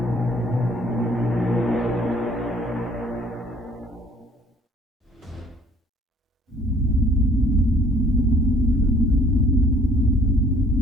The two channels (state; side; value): normal; both; correlation 0.57